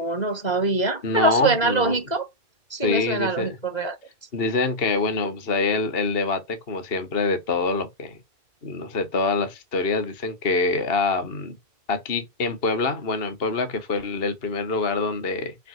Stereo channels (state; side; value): late; right; 2.0 ms